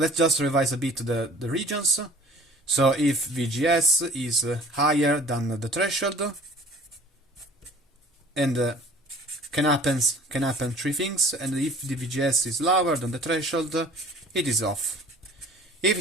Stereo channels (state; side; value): normal; both; correlation 0.48